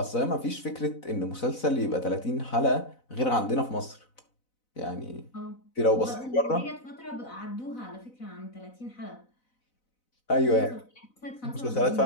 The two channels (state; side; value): late; right; 4.0 ms